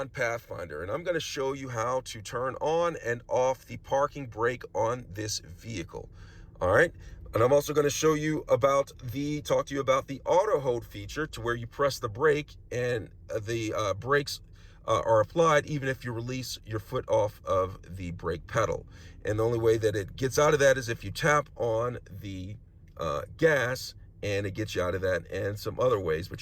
Pathfinder, and I'm going to show you how to turn on and off the parking brake on this vehicle. All right, and I'm also going to show you about talk to you about the auto hold feature, to where you press the brake and the brakes are applied even if you release your foot off of the brake pedal. And the only way that it gets out of that is if you tap on the gas, and it gets you out of that, and some other ways,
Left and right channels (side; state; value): both; identical; correlation 1.00